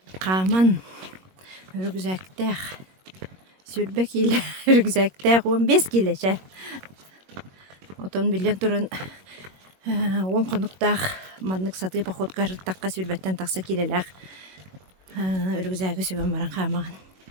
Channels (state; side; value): late; left; 21 ms